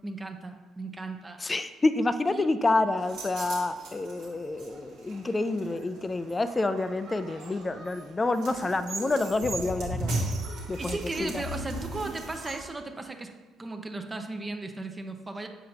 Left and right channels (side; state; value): both; normal; correlation 0.89